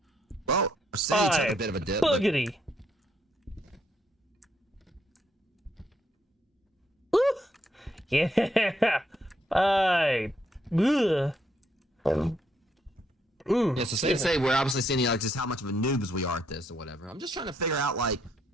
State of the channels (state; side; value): normal; both; correlation 0.74